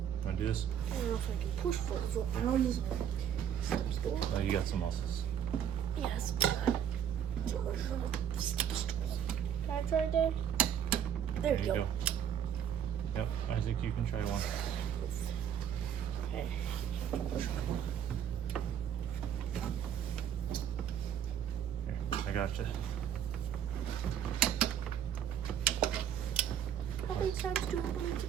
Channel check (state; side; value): quieter; left; 9.3 dB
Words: Wanna do this? I don't know if I can push 40 foot-pounds. Step stool. Oh, you got some muscles. Yes, but not too much of a step stool. Can I try, Dave? There you go. Yep, Isaac, you can try one. Okay. Here, I gotcha. How many times do I